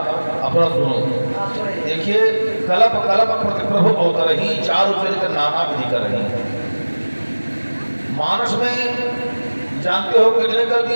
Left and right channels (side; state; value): both; inverted; correlation -1.00